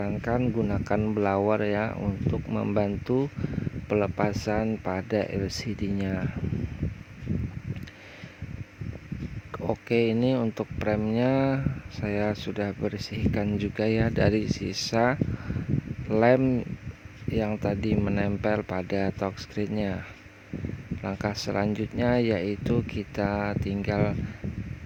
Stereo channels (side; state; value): both; identical; correlation 1.00